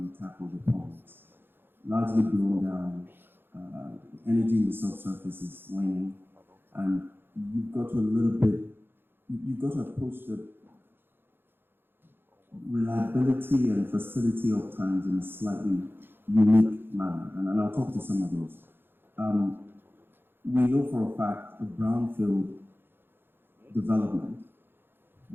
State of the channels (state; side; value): late; left; 0.10 ms